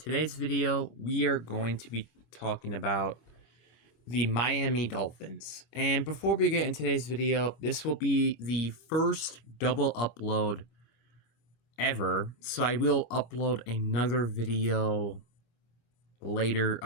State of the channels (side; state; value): right; late; 25 ms